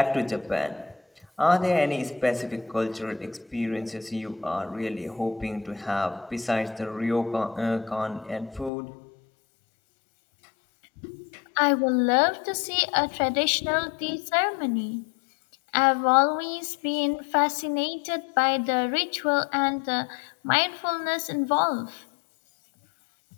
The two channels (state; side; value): drops out; right; at 8.7 s